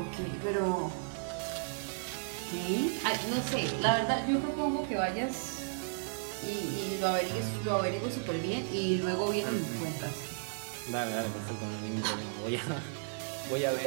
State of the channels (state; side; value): silent; left; 55 dB below the other